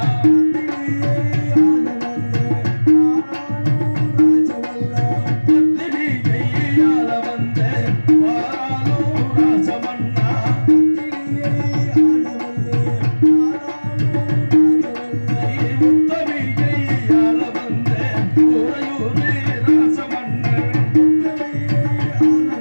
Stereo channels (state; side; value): inverted; both; correlation -1.00